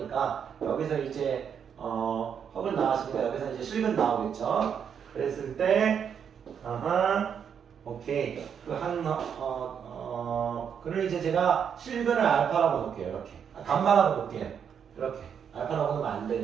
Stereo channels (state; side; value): quieter; left; 7.7 dB